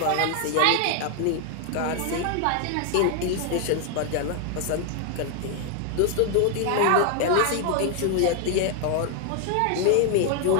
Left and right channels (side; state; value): both; different; correlation 0.00